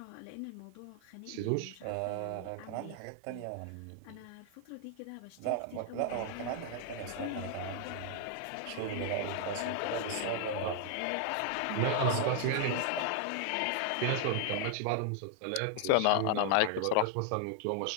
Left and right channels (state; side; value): different; both; correlation 0.00